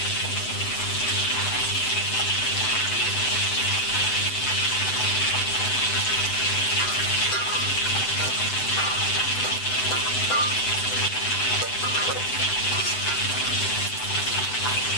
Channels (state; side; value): late; right; 7.9 ms